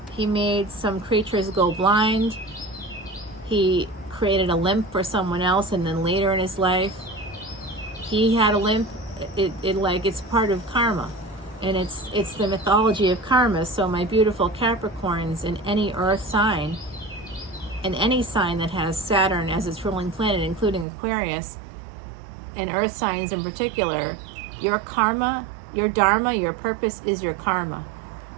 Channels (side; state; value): left; drops out; at 20.9 s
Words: some creatures go blind. He created a limp for someone else, and then later in his life, he had a limp. It's part of karma, and it's the mythology of karma. So my beautiful Capricorns, in any earth sign, and any sign that has Saturn as its ruling planet, including Aquarius, and earth signs in particular, your karma, your dharma, your purpose is your karma.